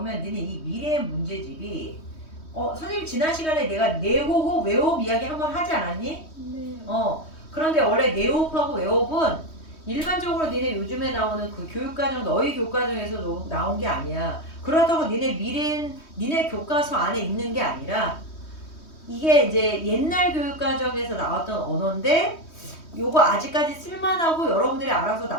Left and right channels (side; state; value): right; late; 3.2 ms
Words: 니네 이 미래의 문제집이 선생님 지난 시간에 내가 내호흡, 외호흡 이야기 한번 하지 않았니? 네. 그런데 원래 내호흡하고 외호흡은 일반적으로 니네 요즘에 나오는 그 교육과정, 너희 교과정에서 나온 게 아니야. 그렇다고 니네 교과서 안에 있는 게 아니라 이게 이제 옛날 교육과정에서 나왔던 언어인데 요거 아직까지 쓸만하고 여러분들이 알아서